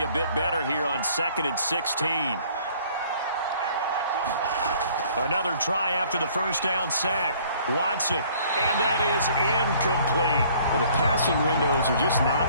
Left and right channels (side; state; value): both; inverted; correlation -0.57